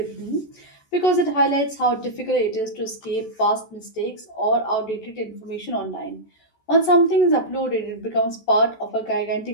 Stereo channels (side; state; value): right; late; 14 ms